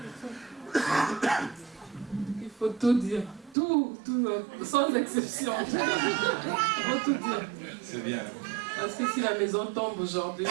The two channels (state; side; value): drops out; left; at 3.6 s